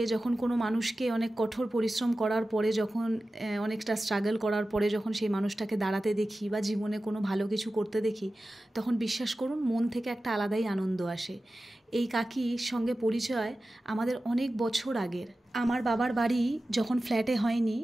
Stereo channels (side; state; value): both; normal; correlation 0.95